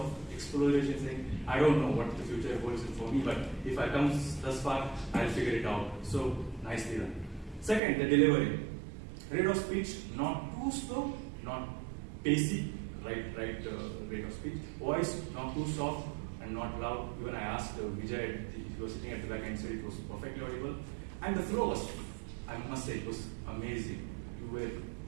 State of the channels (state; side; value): drops out; left; at 7.8 s